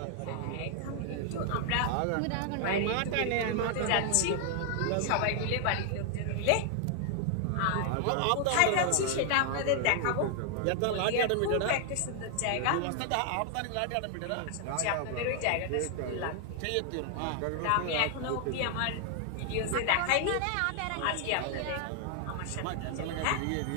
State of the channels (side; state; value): both; different; correlation 0.00